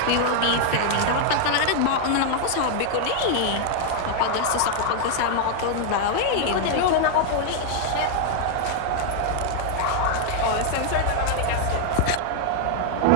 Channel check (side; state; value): both; different; correlation 0.00